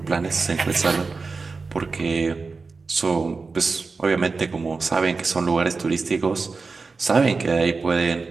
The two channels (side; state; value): left; quieter; 4.3 dB